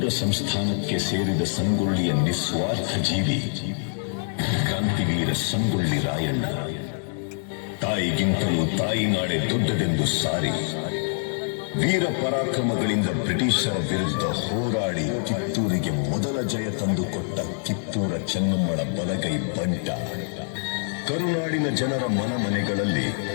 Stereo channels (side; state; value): right; silent; 62 dB below the other